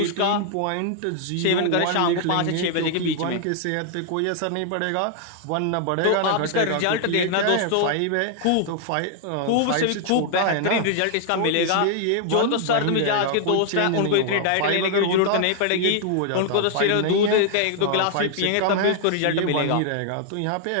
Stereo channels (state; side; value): different; both; correlation 0.00